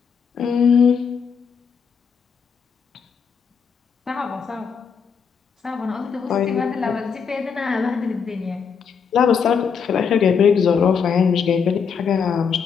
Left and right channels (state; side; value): quieter; right; 6.4 dB